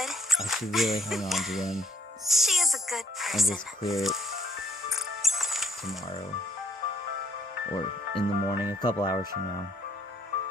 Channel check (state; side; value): normal; both; correlation 0.66